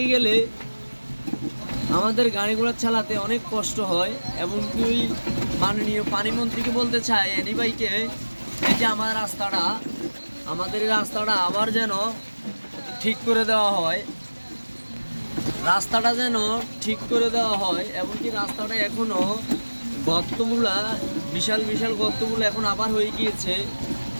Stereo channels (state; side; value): inverted; both; correlation -1.00